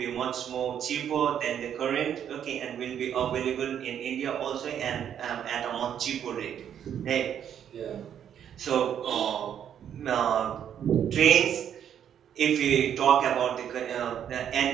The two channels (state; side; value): quieter; left; 9.2 dB